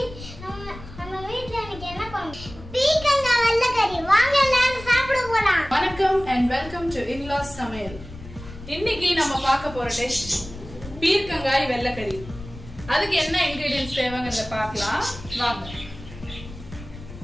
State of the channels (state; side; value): noise; left; rumble, 15 dB below the sound